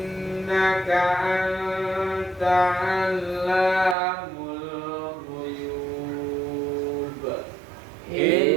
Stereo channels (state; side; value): drops out; left; at 4.0 s